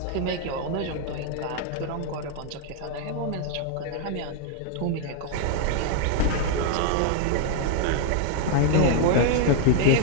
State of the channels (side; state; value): both; different; correlation 0.00